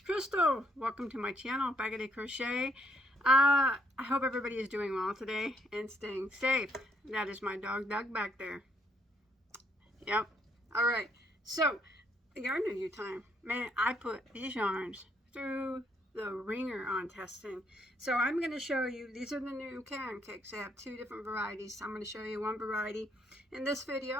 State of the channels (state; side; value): normal; both; correlation 0.71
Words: Welcome to my channel, Bagoday Crochet. I hope everybody is doing well today and staying safe. That is my dog Doug back there. Yep. Alright, so yarn review time. Man, I put these yarns through the ringer on testing. So I'm going to show you, these are the new Caron cakes. They have two different varieties. I'm going to show you one variety in this